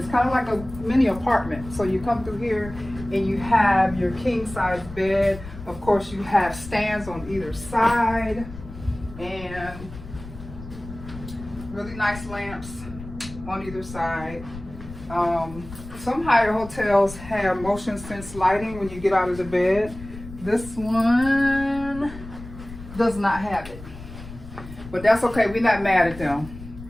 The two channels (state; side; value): noise; left; rumble, 14 dB below the sound